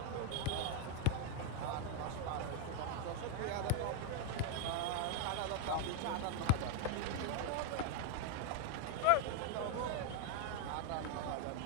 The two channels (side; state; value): both; different; correlation 0.00